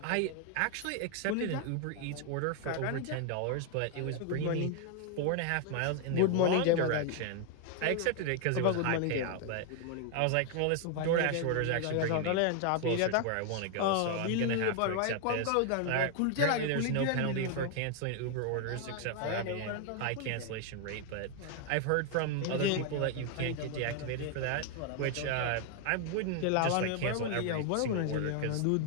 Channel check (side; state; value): both; different; correlation 0.00